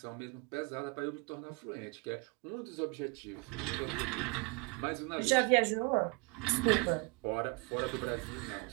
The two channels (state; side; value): quieter; left; 29.9 dB